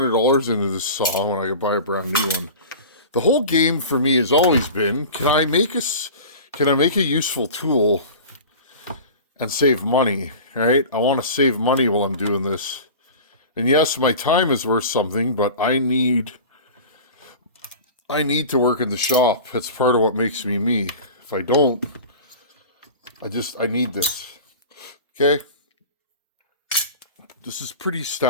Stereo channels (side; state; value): both; inverted; correlation -0.36